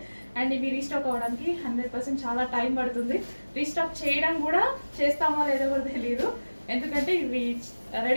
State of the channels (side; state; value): both; inverted; correlation -1.00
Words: అండ్ ఇవి రీస్టాక్ అవ్వడానికి 100% చాలా టైం పడుతుంది. రీస్టాక్ చేయడం కూడా చేస్తామో లేదో కూడా తెలియదు, ఎందుకంటే ఇవి